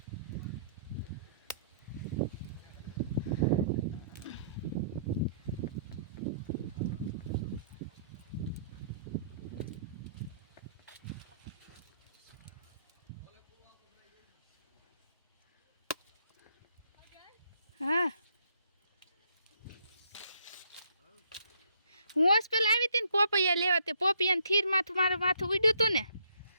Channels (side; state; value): both; inverted; correlation -0.67